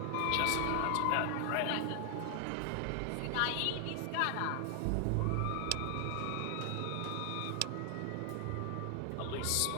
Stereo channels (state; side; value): different; both; correlation 0.00